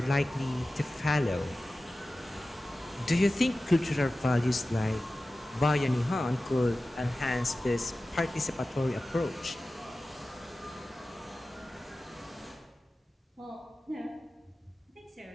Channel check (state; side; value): normal; both; correlation 0.95